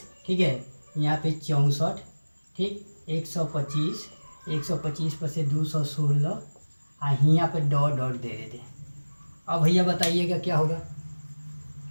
ठीक है, यहाँ पे 64, ठीक, 125 पर से 216, और यहाँ पे डॉट डॉट दे देते हैं। अब भैया बताइएगा क्या होगा।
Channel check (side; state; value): both; inverted; correlation -1.00